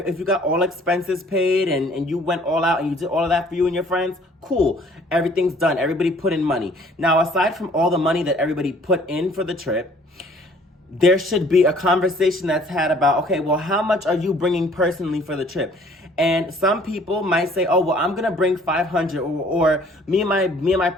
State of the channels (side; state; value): both; normal; correlation 0.56